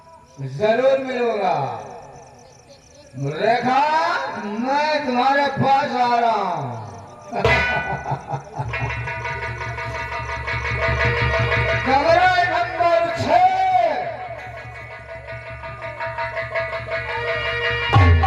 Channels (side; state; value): both; identical; correlation 1.00